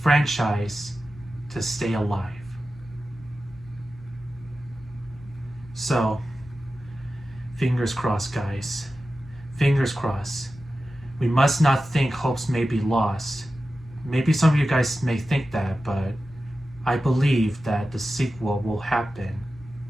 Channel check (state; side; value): normal; both; correlation 0.94